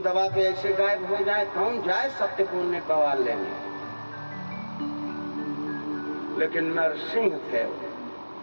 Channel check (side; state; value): both; inverted; correlation -1.00